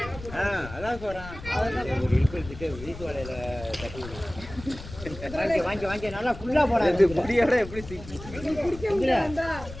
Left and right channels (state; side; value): noise; left; rumble, 13 dB below the sound